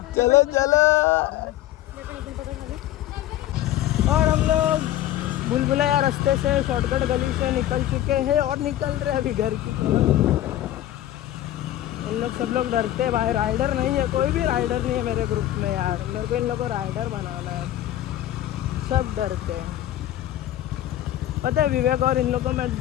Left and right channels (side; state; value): right; quieter; 13.2 dB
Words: चलो चलो। और हम लोग बुलबुलैया रास्ते से शॉर्टकट गली से निकल चुके हैं और निकल रहे अभी घर की। इन लोग सब लोग डरते हैं भाई, राइडर नहीं है, कोई भी राइडर नहीं है मेरे ग्रुप में यार। मेरे को इन लोग को राइडर बनाना है, सब डरते हैं। पता है विवेक और इन लोग को मैं